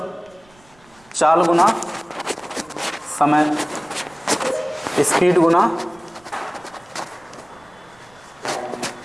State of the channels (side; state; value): right; noise; rumble, 29 dB below the sound